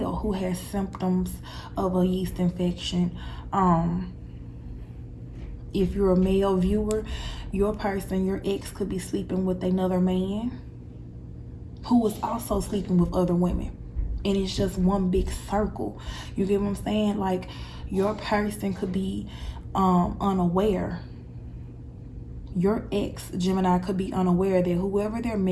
who has symptoms of a yeast infection. If you're a male viewer, your person, your ex, could be sleeping with another man who is also sleeping with other women. And it's just one big circle. You get what I'm saying? Like, your person could be unaware. Your ex, Gemini, could be unaware that whoever they're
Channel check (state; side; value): identical; both; correlation 1.00